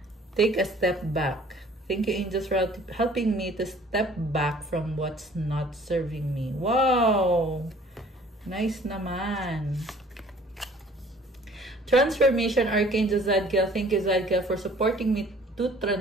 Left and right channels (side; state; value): both; normal; correlation 0.53